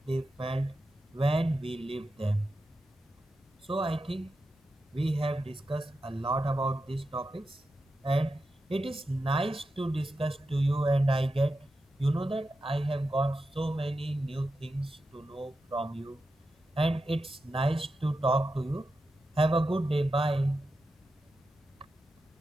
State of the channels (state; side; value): normal; both; correlation 0.90